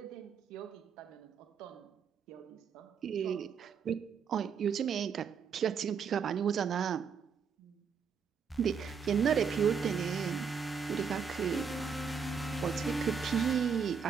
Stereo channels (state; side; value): quieter; left; 6.4 dB